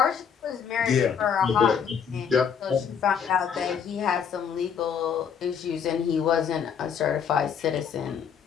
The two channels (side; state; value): right; quieter; 7.3 dB